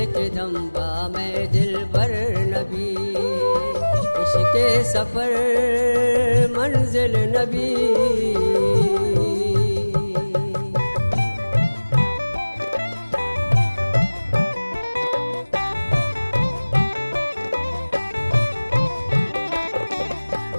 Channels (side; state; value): both; inverted; correlation -1.00